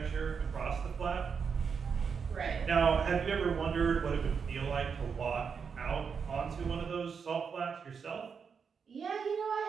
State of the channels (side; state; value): left; quieter; 6.2 dB